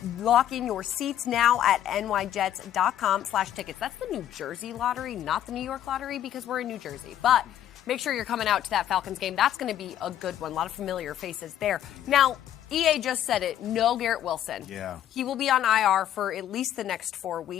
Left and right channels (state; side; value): quieter; right; 11.3 dB